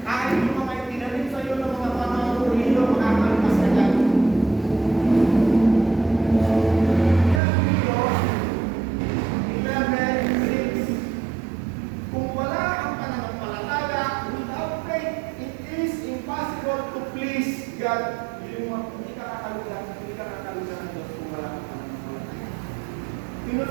Kahit yung mga itinanim sa iyo ng mga panahon o hilo, makakalpas ka dyan. Yan ang Diyos, Sino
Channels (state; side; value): drops out; left; at 7.4 s